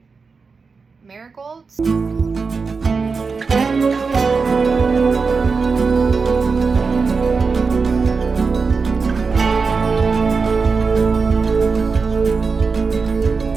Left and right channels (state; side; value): quieter; left; 4.8 dB